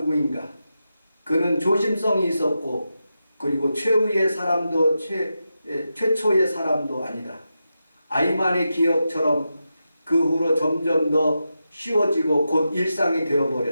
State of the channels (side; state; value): both; inverted; correlation -0.89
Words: 그는 조심성이 있었고 그리고 최후의 사람도 최초의 사람도 아니다. 아이만의 기억처럼 그 후로 점점 더 쉬워지고 곧 일상이